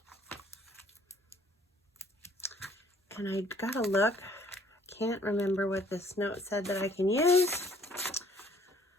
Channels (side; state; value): both; normal; correlation 0.59